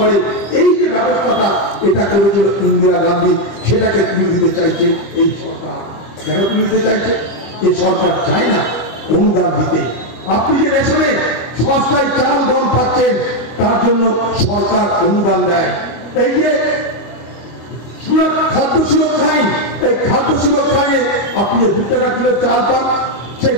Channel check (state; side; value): late; right; 25 ms